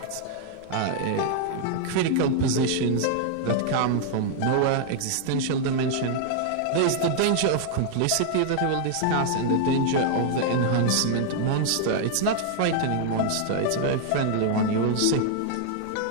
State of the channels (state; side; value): different; both; correlation 0.00